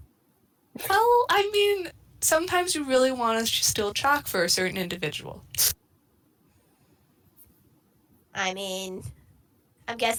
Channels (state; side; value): identical; both; correlation 1.00